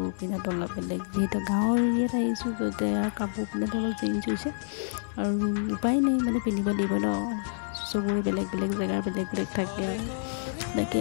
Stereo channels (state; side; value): silent; right; digital silence